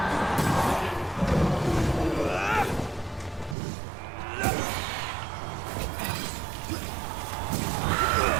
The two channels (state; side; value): drops out; left; at 3.6 s